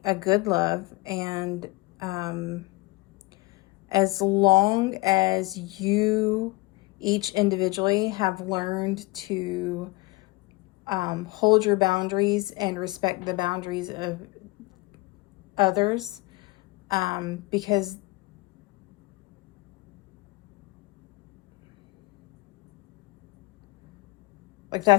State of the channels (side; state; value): right; quieter; 23.4 dB